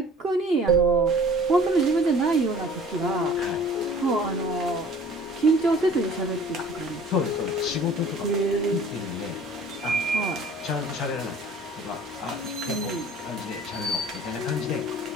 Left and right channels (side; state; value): both; normal; correlation 0.49